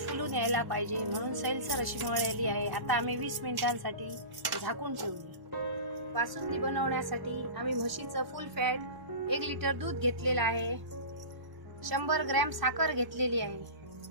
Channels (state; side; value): late; left; 1.1 ms